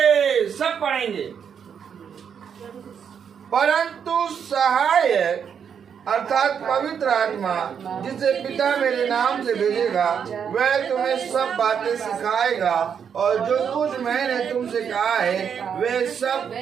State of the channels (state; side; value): quieter; left; 7.5 dB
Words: सब पढ़ेंगे। परंतु सहायक अर्थात पवित्र आत्मा, जिसे पिता मेरे नाम से भेजेगा, वह तुम्हें सब बातें सिखाएगा और जो कुछ मैंने तुमसे कहा है वह सब